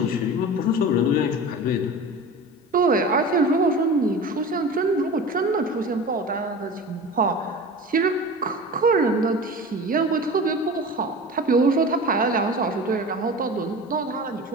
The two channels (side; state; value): both; normal; correlation 0.34